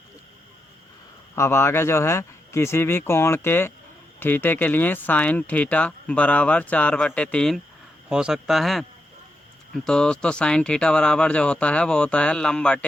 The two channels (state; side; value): normal; both; correlation 0.84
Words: अब आगे जो है, किसी भी कोण के थीटे के लिए साइन थीटा बराबर 4/3 हो सकता है। तो दोस्तों साइन थीटा बराबर जो होता है वो होता है लंब